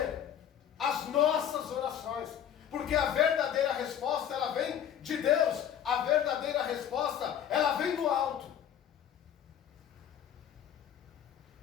às nossas orações. Porque a verdadeira resposta, ela vem de Deus. A verdadeira resposta, ela vem do alto.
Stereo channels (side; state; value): right; quieter; 9.6 dB